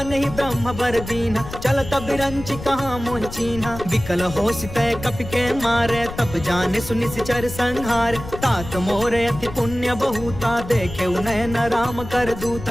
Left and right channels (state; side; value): noise; left; rumble, 11 dB below the sound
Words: ही ब्रह्म बर दीना, चलत बिरंच कहाँ मोह चीन्हा। विकल हो सितय कपि के मारे, तब जाने सुनि सिचर संहार। तात मोरे अति पुण्य बहुता, देखे नयन राम कर